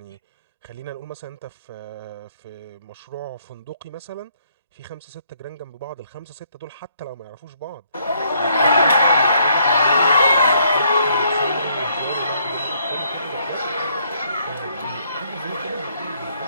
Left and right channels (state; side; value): inverted; both; correlation -0.69